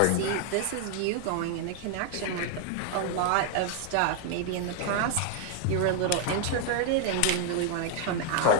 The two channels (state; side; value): different; both; correlation 0.00